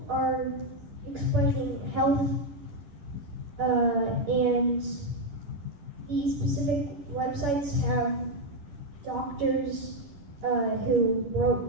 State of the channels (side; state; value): left; late; 11 ms